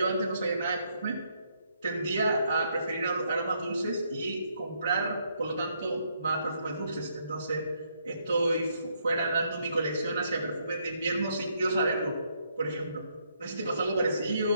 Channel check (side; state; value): both; inverted; correlation -0.73